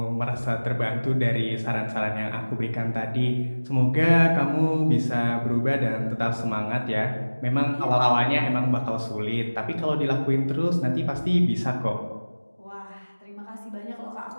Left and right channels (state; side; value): inverted; both; correlation -1.00